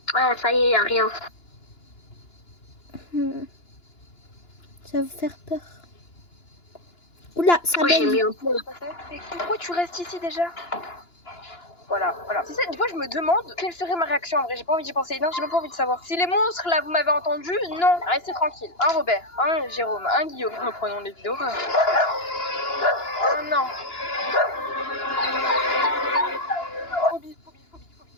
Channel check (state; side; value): late; right; 2.9 ms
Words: Ouais, ça y est, y a rien. Ça va faire peur. Oula, ça Moi, j'ai baigne. mis un peu. Mais pourquoi tu restes ici déjà? Voilà. C'est ça, des fois je me demande quelle serait ma réaction en vrai, j'ai pas envie d'y penser. Non, j'ai même pas envie de savoir. Si les monstres là, vous m'avez entendu, non, restez tranquille. Un Robert, un Jérôme, un Guillaume. Reprenons les vidéos. Oh non. Phobie.